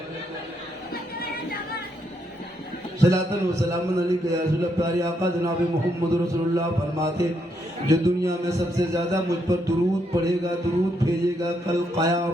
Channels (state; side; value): normal; both; correlation 0.77